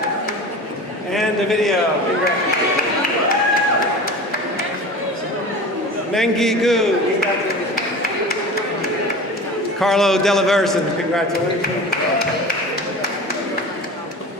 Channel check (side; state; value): both; normal; correlation 0.35